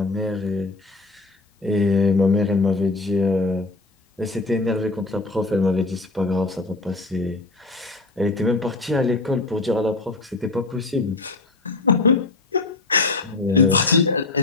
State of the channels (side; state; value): right; quieter; 3.4 dB